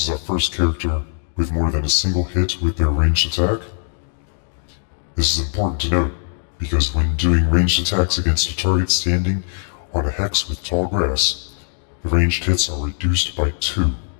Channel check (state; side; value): silent; right; digital silence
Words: is our first character with more than a single hit with their ranged attack. This is important to note, because when doing ranged attacks against a target standing on a hex with tall grass, the ranged hits are reduced by 2.